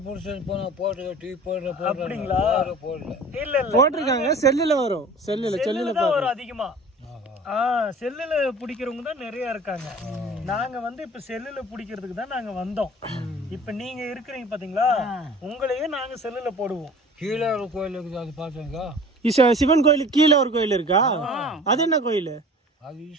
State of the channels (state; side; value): normal; both; correlation 0.43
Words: புடிச்சு போனா போட்டு டிவி போடுற அப்படிங்களா? போடல. இல்ல இல்ல போட்டிருக்காங்க. செல்லுல வரும். செல்லுல தான் வரும் அதிகமா. செல்லுல பிடிக்கிறவங்க தான் நிறைய இருக்காங்க. நாங்க வந்து இப்ப செல்லுல பிடிக்கிறதுக்கு தான் நாங்க வந்தோம். இப்ப நீங்க இருக்கிறீங்க பாத்தீங்களா, உங்களையே நாங்க செல்லுல போடுவோம். கீழே ஒரு கோயில் இருக்குது, அது பார்த்தீங்க. சிவன் கோயிலுக்கு கீழே ஒரு கோயில் இருக்கா? அது என்ன கோயில்? அது